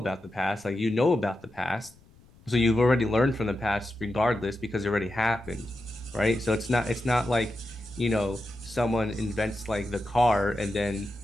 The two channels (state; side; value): noise; left; rumble, 27 dB below the sound